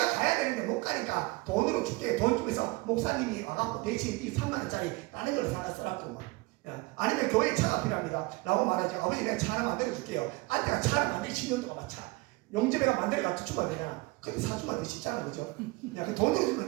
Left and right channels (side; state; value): left; quieter; 23.5 dB